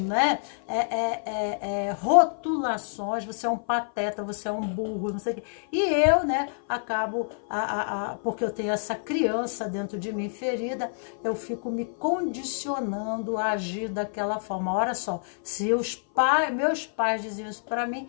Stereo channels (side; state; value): right; silent; 56 dB below the other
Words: Rotulações, você é um pateta, você é um burro, não sei o quê. E eu, né, acabo, porque eu tenho essa criança dentro de mim ferida, eu fico me condicionando a agir daquela forma. Olha só, se meus pais diziam isso para mim,